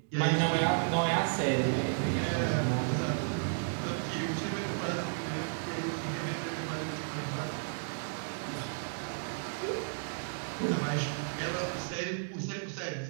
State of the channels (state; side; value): silent; left; digital silence